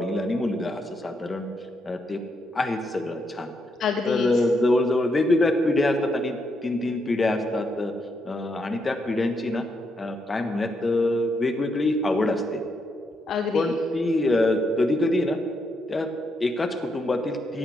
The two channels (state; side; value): normal; both; correlation 0.79